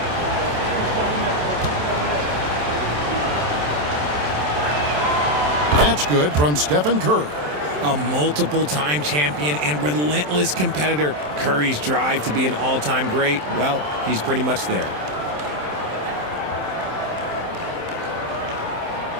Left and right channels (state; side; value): late; left; 27 ms